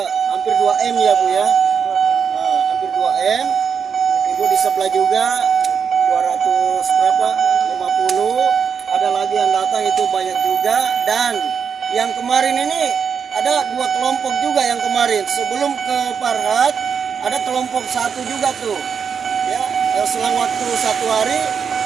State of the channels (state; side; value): quieter; left; 6.7 dB